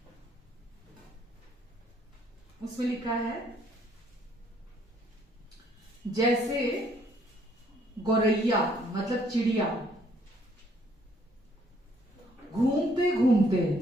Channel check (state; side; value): normal; both; correlation 0.65